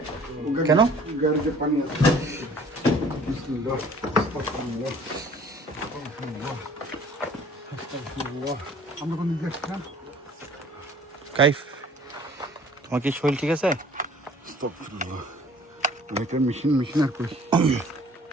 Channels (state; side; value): normal; both; correlation 0.52